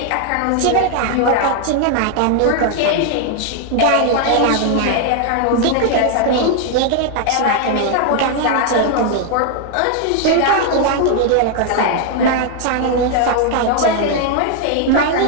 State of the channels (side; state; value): both; different; correlation 0.00